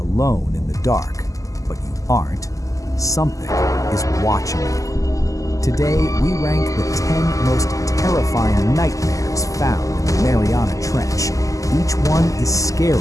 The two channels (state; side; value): late; right; 0.16 ms